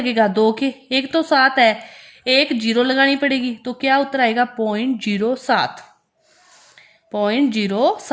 2 के। एक तो 7 है, एक 0 लगानी पड़ेगी, तो क्या उत्तर आएगा? 0.07।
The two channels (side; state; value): both; identical; correlation 1.00